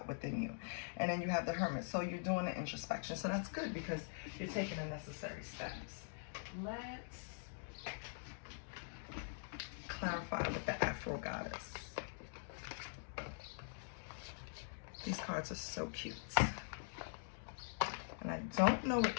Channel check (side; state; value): right; silent; digital silence